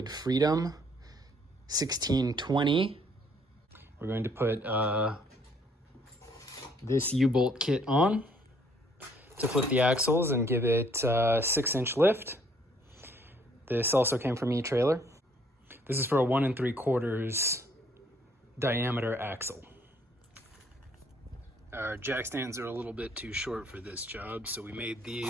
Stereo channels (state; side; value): normal; both; correlation 0.64